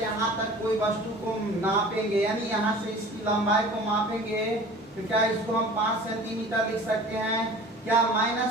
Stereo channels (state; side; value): normal; both; correlation 0.43